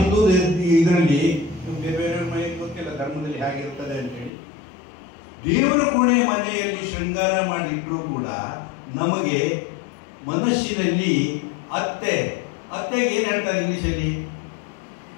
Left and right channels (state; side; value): drops out; right; at 4.3 s